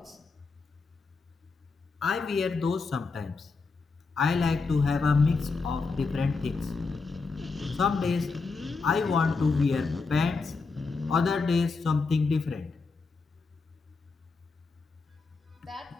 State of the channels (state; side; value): quieter; right; 4.3 dB